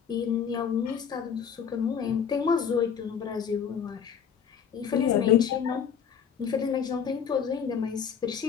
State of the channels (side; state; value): right; quieter; 7.5 dB